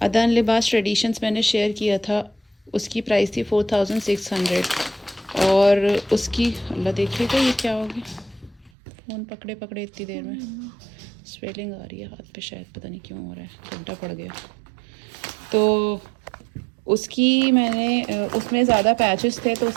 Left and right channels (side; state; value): left; drops out; at 8.7 s